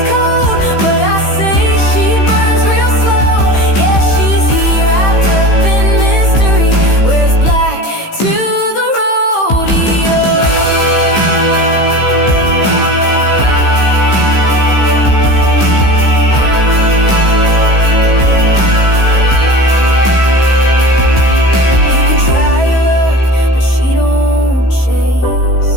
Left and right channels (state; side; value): late; right; 15 ms